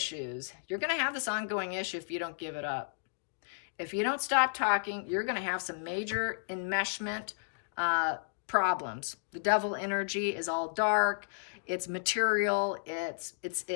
You're going to have this ongoing issue if you don't give it up. If you don't stop talking, you're going to have some major enmeshment problems. The devil energy is all dark. it's material, it's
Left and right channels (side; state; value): right; silent; digital silence